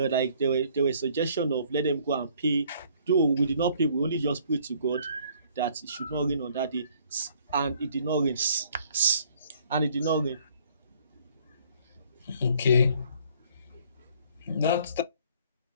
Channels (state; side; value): inverted; both; correlation -0.60